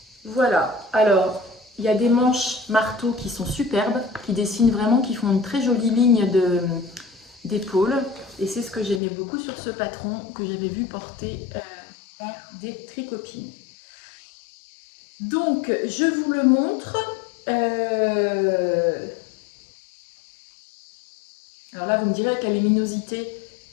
Voilà, alors il y a des manches marteau qui sont superbes, qui dessinent vraiment, qui font une très jolie ligne d'épaule. Et c'est ce que j'aimais beaucoup sur ce patron que j'avais vu porter par des tricopines. Donc je vous le montre. Alors là vous me direz avec la luminosité,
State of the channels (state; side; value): drops out; right; at 9.0 s